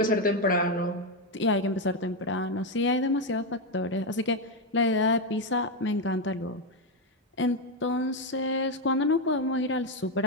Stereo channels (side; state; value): both; normal; correlation 0.07